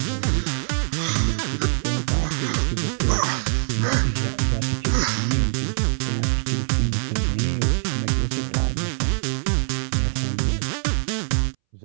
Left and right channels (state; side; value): silent; left; 63 dB below the other